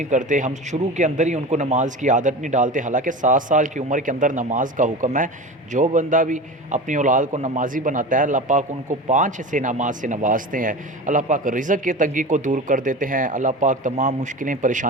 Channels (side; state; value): both; normal; correlation 0.30